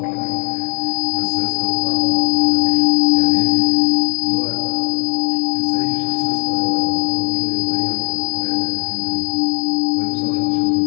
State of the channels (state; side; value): quieter; right; 32.1 dB